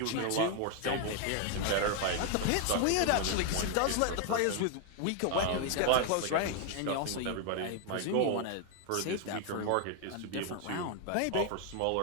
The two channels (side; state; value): both; different; correlation 0.00